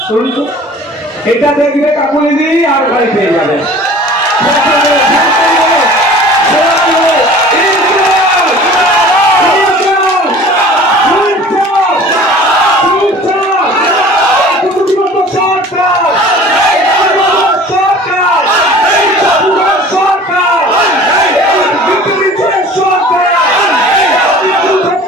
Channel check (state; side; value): normal; both; correlation 0.45